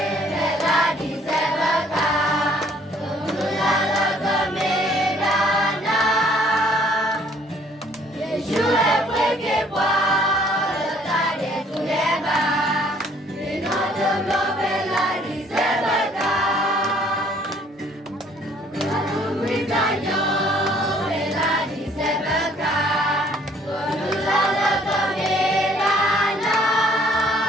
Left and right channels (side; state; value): both; normal; correlation 0.60